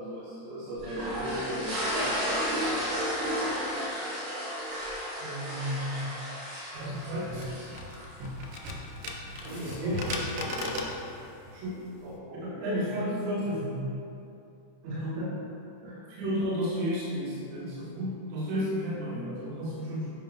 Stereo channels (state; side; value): late; left; 31 ms